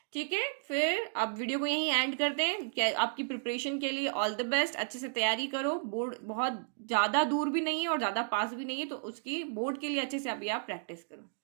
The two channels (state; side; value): silent; left; digital silence